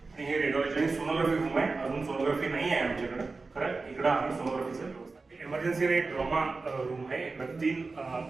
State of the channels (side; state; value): left; quieter; 3.9 dB